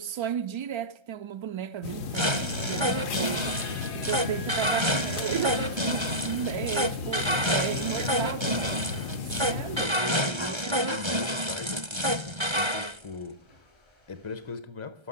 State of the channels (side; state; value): left; late; 1.3 ms